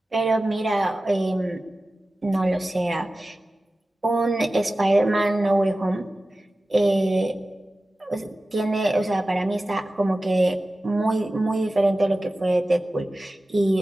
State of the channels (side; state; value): both; normal; correlation 0.96